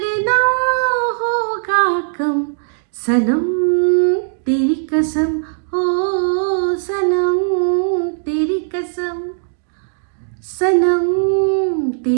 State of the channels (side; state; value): left; silent; digital silence